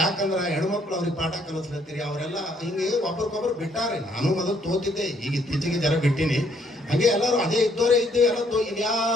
ಹೆಣ್ಮಕ್ಳು ಅವ್ರಿಗೆ ಪಾಠ ಕಲಿಸ್ಲತ್ತೀರಿ. ಅವರೆಲ್ಲ ಹಿಂಗೆ ಒಬ್ರಿಗೊಬ್ರು ಬಿಟ್ಟಾರೆ. ನಾನು ಮೊದಲು ತೋತಿದ್ದೆ, ಈಗ ಇತ್ತೀಚೆಗೆ ಜರ ಬಿಟ್ಟಿನಿ. ಹಂಗೆ ಎಲ್ಲರೂ ಅದೇ ಇದ್ದವರೇ ಇದ್ದೇವೆ, ಎಲ್ಲ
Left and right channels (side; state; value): both; normal; correlation 0.68